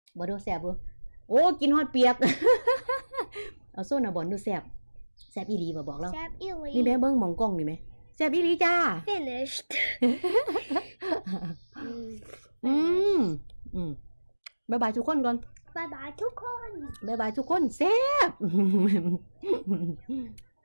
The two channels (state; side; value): inverted; both; correlation -1.00